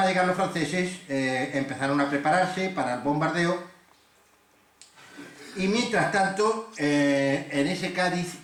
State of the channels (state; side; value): identical; both; correlation 1.00